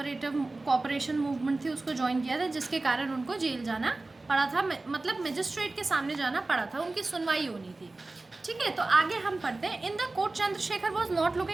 मूवमेंट थी उसको ज्वाइन किया था, जिसके कारण उनको जेल जाना पड़ा था, मतलब मजिस्ट्रेट के सामने जाना पड़ा था, उनकी सुनवाई होनी थी। ठीक है, तो आगे हम पढ़ते हैं। In the court Chandrashekhar was not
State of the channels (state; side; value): quieter; left; 3.2 dB